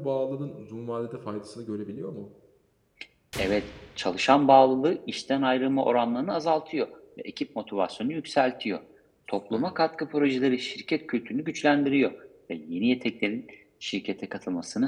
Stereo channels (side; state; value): both; identical; correlation 1.00